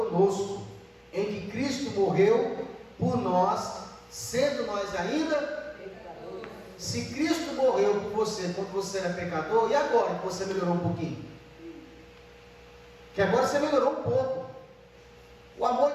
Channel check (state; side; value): identical; both; correlation 1.00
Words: em que Cristo morreu por nós, sendo nós ainda pecadores. Se Cristo morreu por você quando você era pecador, e agora que você melhorou um pouquinho? Que agora você melhorou um pouco. O amor